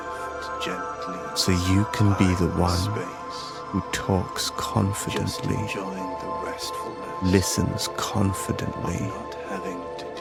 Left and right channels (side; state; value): both; identical; correlation 1.00